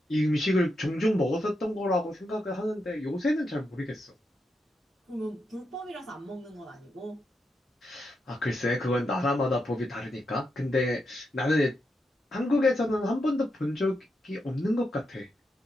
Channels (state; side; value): normal; both; correlation 0.84